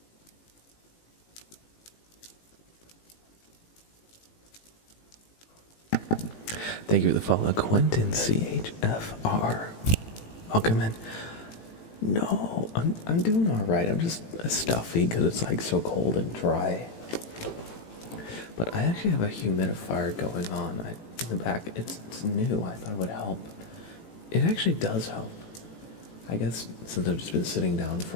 Thank you for the follow, Quentin CHFR. Welcome in. No, I'm doing all right. I'm just stuffy because it's like so cold and dry. But I actually have a humidifier going on in the back. It's new. I thought it would help. It actually does help. I guess since I've just been sitting down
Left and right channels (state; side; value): late; right; 18 ms